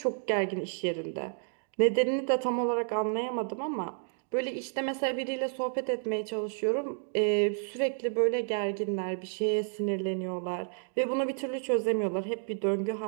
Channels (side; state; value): left; silent; 57 dB below the other